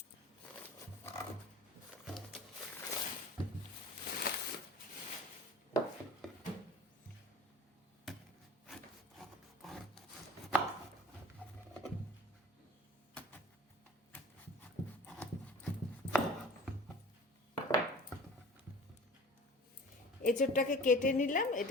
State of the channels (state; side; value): normal; both; correlation 0.42